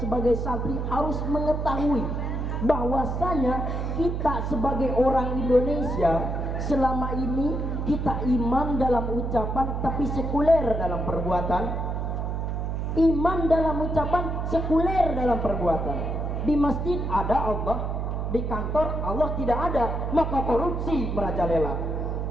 sebagai santri harus mengetahui bahwasanya kita sebagai orang Indonesia selama ini kita iman dalam ucapan tapi sekuler dalam perbuatan. Iman dalam ucapan, sekuler dalam perbuatan. Di masjid ada Allah, di kantor Allah tidak ada, maka korupsi merajalela.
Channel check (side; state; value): right; noise; hum, 2 dB below the sound